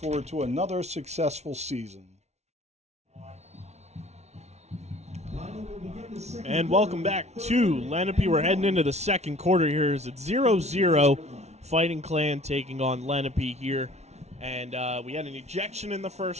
to another successful season. And welcome back to Lenape. We're heading into the second quarter here. It's 0-0. Fighting Clan taking on Lenape here. And we had an ejection in the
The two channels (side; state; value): left; late; 0.32 ms